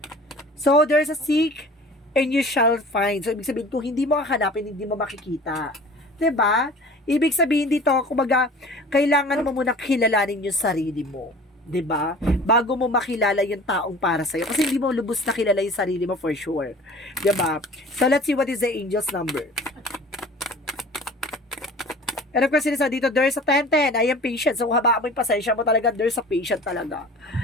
So there's a seek and you shall find. So, ibig sabihin, kung hindi mo hahanapin, hindi mo makikita. 'Di ba? Ibig sabihin dito, kumbaga, kailangan mo muna kilalanin yung sarili mo. 'Di ba? Bago mo makilala yung taong para sa'yo. Kasi hindi mo lubos na kilala yung sarili mo for sure. 'Di ba? So, let's see what is the angel's number. And of course, sinisa dito, there's a 10-10. I am patient. So, habaan mo yung pasensya mo talaga, there's a patient talaga.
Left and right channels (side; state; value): both; normal; correlation 0.43